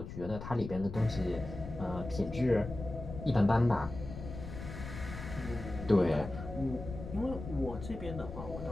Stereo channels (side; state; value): left; noise; rumble, 9 dB below the sound